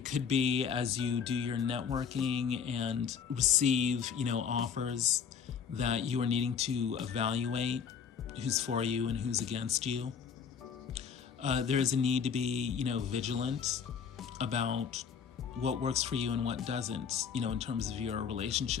could be as you do your networking and receive, offers that you are needing to evaluate who's for you and who's against you. There is a need to be, vigilant about what works for you and what doesn't, in terms of your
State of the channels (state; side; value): quieter; right; 7.0 dB